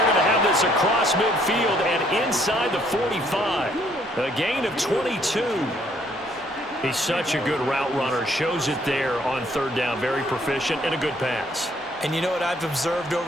going to have this across midfield and inside the 45. A gain of 22. He's such a good route runner. Shows it there on 3rd down. Very proficient and a good pass. And you know what I've observed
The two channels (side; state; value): both; normal; correlation 0.66